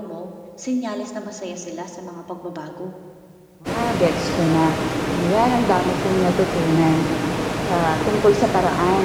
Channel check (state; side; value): identical; both; correlation 1.00